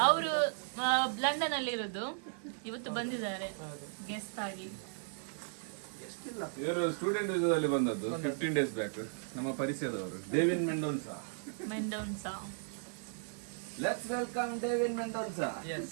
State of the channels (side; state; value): left; silent; 54 dB below the other